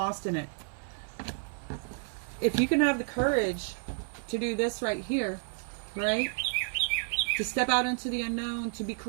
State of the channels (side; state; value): left; silent; 57 dB below the other